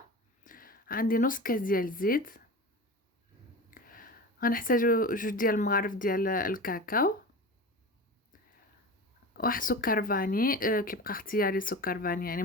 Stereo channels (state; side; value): normal; both; correlation 0.30